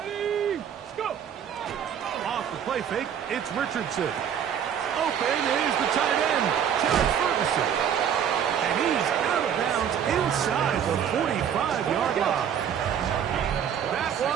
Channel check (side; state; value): left; quieter; 8.6 dB